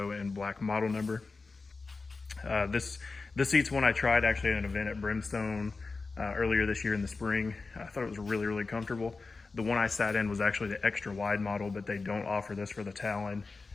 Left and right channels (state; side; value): quieter; right; 4.0 dB